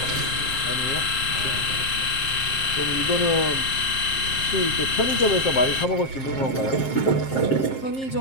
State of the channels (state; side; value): late; right; 7.5 ms